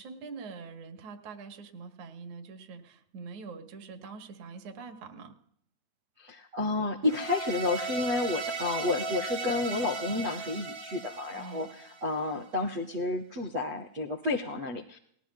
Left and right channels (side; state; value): left; late; 8.9 ms